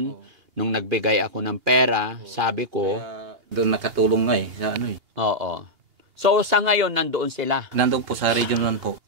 nung nagbigay ako ng pera, sabi ko... Kaya doon nakatulong nga sa Oo. So, sa ngayon, nandoon sila? Nandoon po sa Region 1 po.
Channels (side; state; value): left; late; 2.8 ms